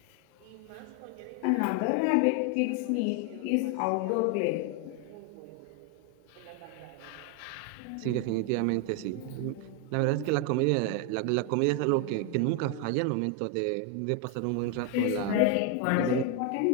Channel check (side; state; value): both; different; correlation 0.01